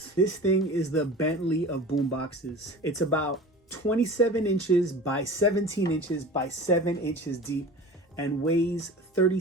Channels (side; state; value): both; normal; correlation 0.37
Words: This thing is the Bentley of boomboxes. It's about 27 inches by 17 inches by 7 inches deep and weighs